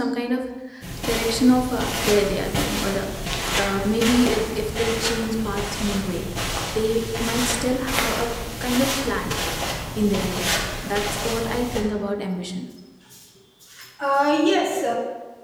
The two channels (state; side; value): identical; both; correlation 1.00